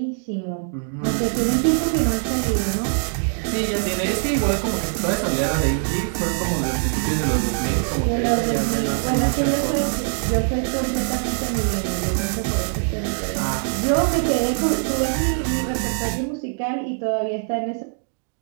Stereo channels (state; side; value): silent; left; 64 dB below the other